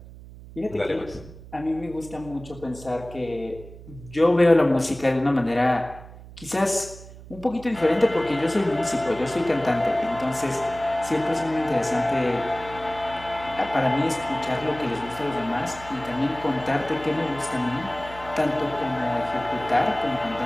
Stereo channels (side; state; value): right; noise; hum, 17 dB below the sound